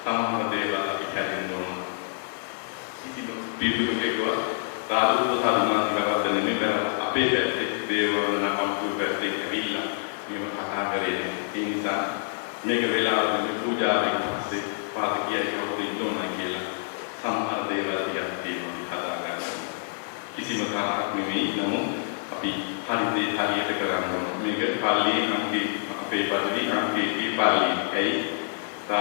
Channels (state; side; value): silent; right; 60 dB below the other